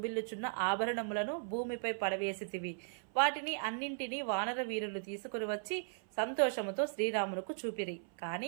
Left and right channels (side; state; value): left; silent; 53 dB below the other